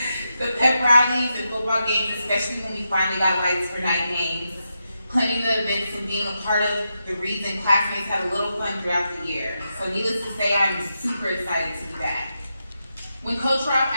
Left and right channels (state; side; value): inverted; both; correlation -0.86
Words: The pep rallies and football games, especially when we finally got lights for night games. Planning the events and being a part of the reason classmates had a little fun throughout the year. So needless to say, I'm super excited to be back. When Coach Rob